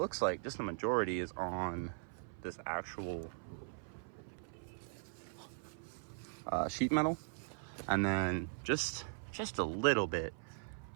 like just the majority is on this actual sheet metal. And then just a little bit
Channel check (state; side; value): silent; left; 51 dB below the other